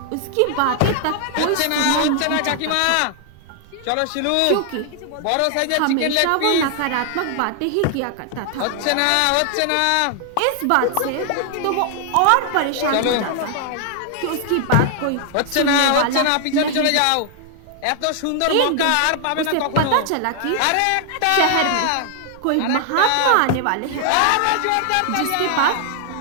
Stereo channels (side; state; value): both; different; correlation 0.00